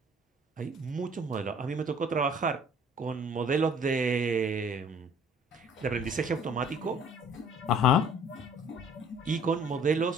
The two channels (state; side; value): normal; both; correlation 0.54